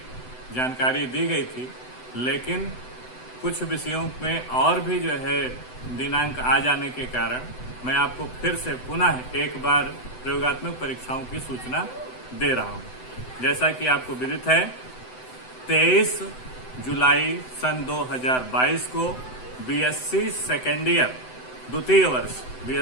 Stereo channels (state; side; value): late; right; 7.9 ms